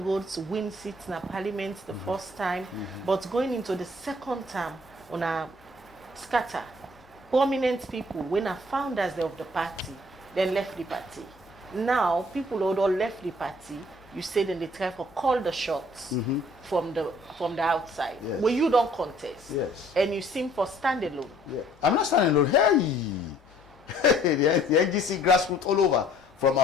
win seats in parliament the first time, but going into the second term, una scatter. Prominent people, when are founders of the party, then left the party. Now, people who all left the party, you say then they try to call the shots from the outside. Yes. When you don't contest. Yes. And you seem for standalone. Yeah. I'm not standing alone. Hey! the NGC grassroots all over, from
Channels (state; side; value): normal; both; correlation 0.58